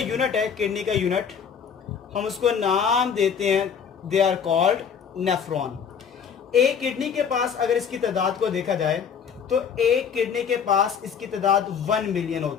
है, किडनी का यूनिट हम उसको नाम देते हैं, दे आर कॉल्ड नेफ्रॉन। एक किडनी के पास अगर इसकी तादाद को देखा जाए तो एक किडनी के पास इसकी तादाद 1 मिलियन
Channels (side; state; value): right; quieter; 7.1 dB